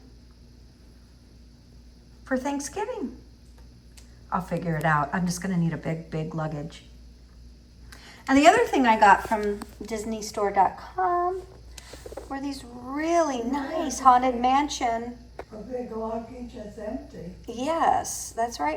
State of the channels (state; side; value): identical; both; correlation 1.00